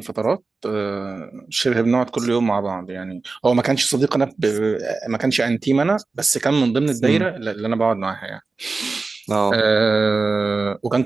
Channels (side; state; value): left; quieter; 3.9 dB